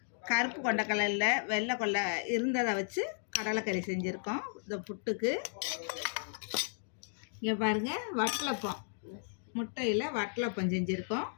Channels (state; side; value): silent; right; digital silence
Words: கருப்பு கொண்டக்கடலை இல்லை, வெள்ளை கொண்டை இருந்ததை வச்சு கடலைக்கறி செஞ்சுருக்கோம் இந்த புட்டுக்கு. இங்கே பாருங்கள், வட்டலப்பம், முட்டையில் வட்டலப்பம் செஞ்சுருக்கோம்.